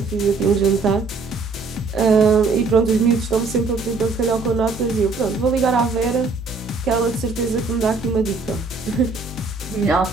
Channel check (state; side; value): quieter; left; 4.1 dB